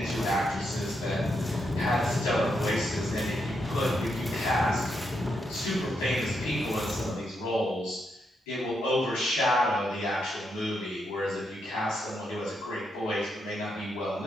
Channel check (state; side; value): normal; both; correlation 0.81